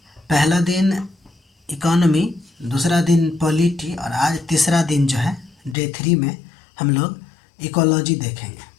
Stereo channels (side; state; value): right; drops out; at 5.8 s